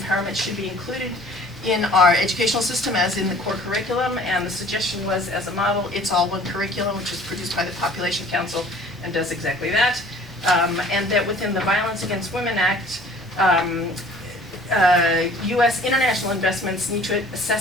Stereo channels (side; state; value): both; normal; correlation 0.51